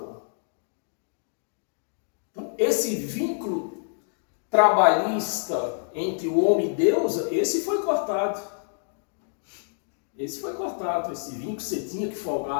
Então, esse vínculo trabalhista entre o homem e Deus, esse foi cortado. Esse vínculo você tinha que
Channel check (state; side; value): silent; right; digital silence